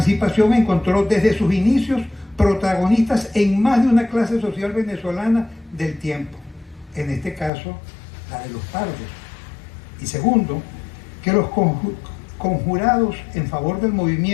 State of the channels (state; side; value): drops out; right; at 7.5 s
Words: encontró desde sus inicios protagonistas en más de una clase social venezolana del tiempo, en este caso la de los pardos. Y segundo, que los conjurados en favor del